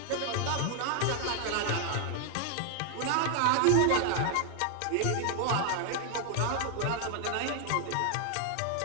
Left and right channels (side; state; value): both; different; correlation 0.00